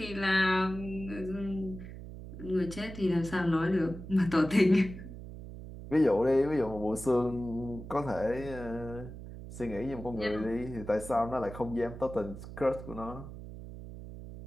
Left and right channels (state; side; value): noise; right; hum, 12 dB below the sound